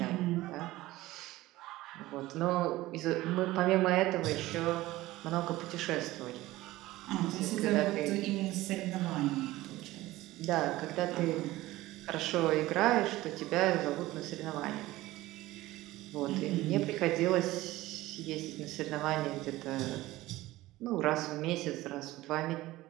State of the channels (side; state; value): left; quieter; 17.5 dB